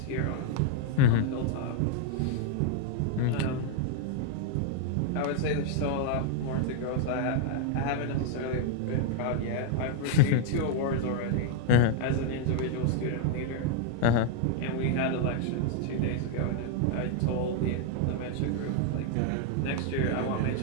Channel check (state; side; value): different; both; correlation 0.00